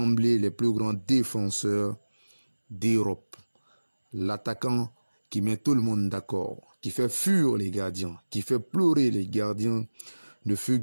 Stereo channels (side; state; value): both; inverted; correlation -1.00